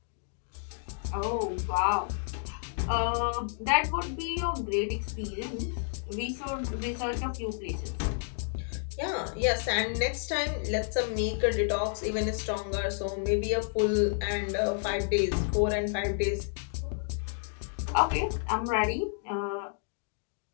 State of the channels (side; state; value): right; silent; digital silence